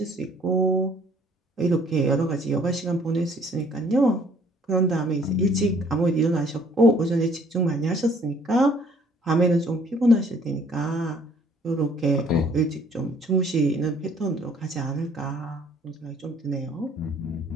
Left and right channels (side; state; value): both; normal; correlation 0.59